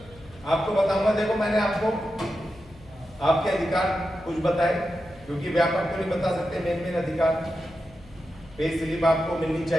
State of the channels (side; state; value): left; noise; hum, 23 dB below the sound